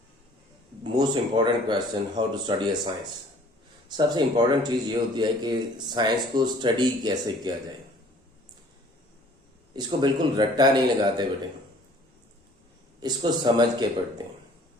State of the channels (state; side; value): normal; both; correlation 0.53